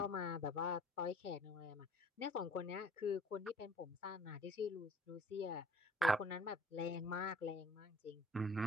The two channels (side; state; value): both; normal; correlation 0.53